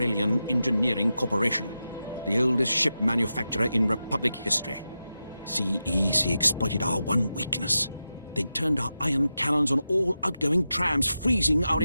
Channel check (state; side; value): inverted; both; correlation -0.90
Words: Engineering Corporation, the oldest ship manufacturer in Republic history. CEC exploited our one weakness. They turned our ion cannons on all outgoing trams, freezing our